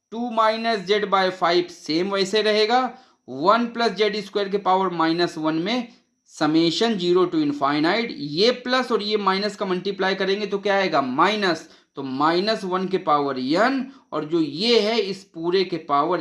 2 minus z by 5 same वैसे रहेगा 1 प्लस जेड स्क्वायर के पावर -1 में समेशन 0 to इनफाइनाइट ये प्लस और ये माइनस का मल्टीप्लाई करेंगे तो क्या आएगा माइनस तो -1 के पावर n और जो ये है इस पूरे के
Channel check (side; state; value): both; identical; correlation 1.00